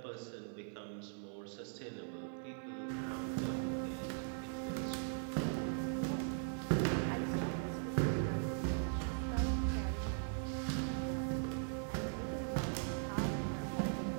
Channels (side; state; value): left; silent; 51 dB below the other